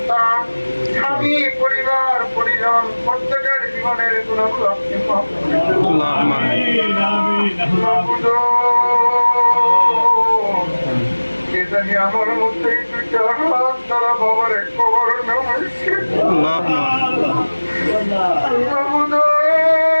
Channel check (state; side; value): inverted; both; correlation -1.00